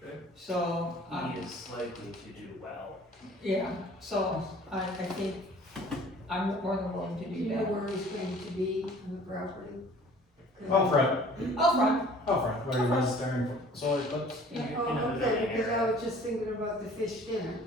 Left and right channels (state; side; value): normal; both; correlation 0.50